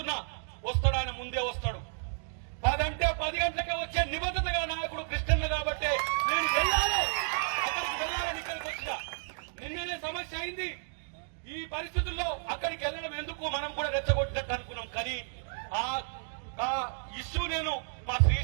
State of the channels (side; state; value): left; silent; digital silence